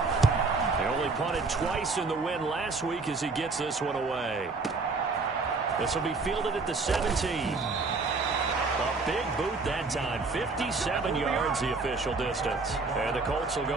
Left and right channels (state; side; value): quieter; left; 4.0 dB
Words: They only punted twice in the win last week as he gets this one away. This will be fielded at the 17. A big boot that time. 57 yards the official distance. And the Colts will go